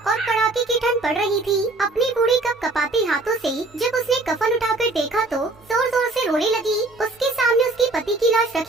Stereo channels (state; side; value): quieter; left; 3.1 dB